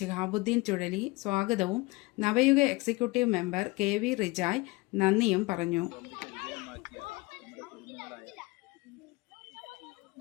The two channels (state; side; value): quieter; right; 23.2 dB